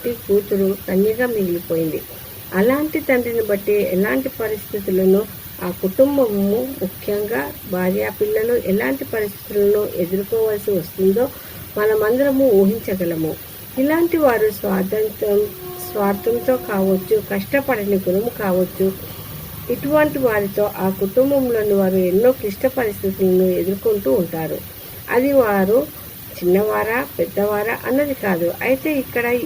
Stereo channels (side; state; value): both; identical; correlation 1.00